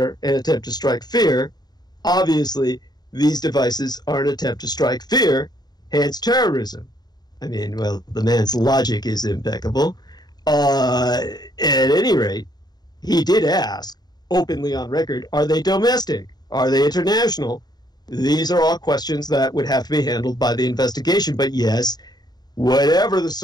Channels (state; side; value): late; right; 0.20 ms